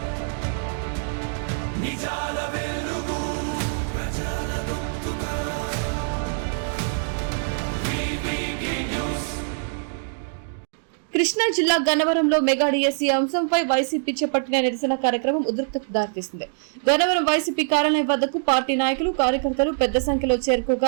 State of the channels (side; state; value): left; silent; digital silence